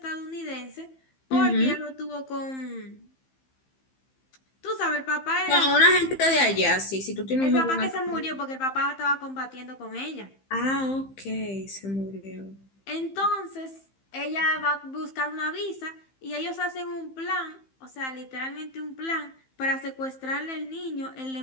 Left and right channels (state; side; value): late; right; 15 ms